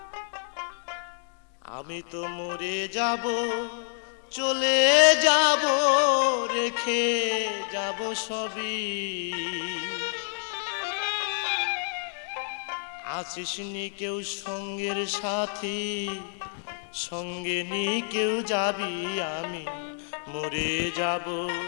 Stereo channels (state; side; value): silent; right; 58 dB below the other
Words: আমি তো মরে যাব, চলে যাব, রেখে যাব সবই। আছিস নি কেউ সঙ্গের সাথী, সঙ্গে নি কেউ যাবি, আমি মরে যাব,